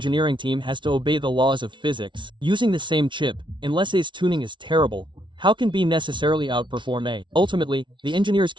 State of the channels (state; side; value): late; left; 0.24 ms